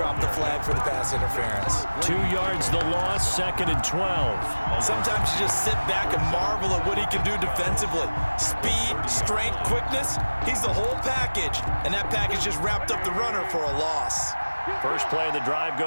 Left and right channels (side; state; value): both; inverted; correlation -1.00